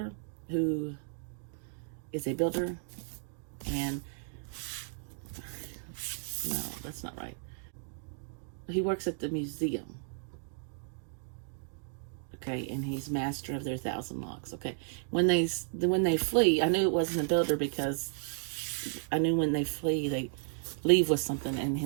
who is a builder, and no, that's not right. He works at the museum. Okay, and he's master of their 1,000 locks. Okay, when they flee, I knew it wasn't a builder because I knew when they flee, they leave with something,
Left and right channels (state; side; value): silent; left; digital silence